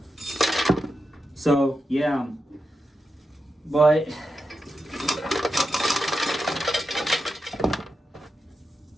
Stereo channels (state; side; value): normal; both; correlation 0.88